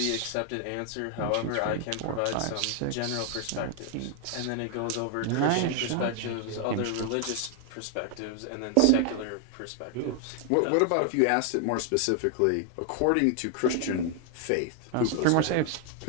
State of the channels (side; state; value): both; different; correlation 0.00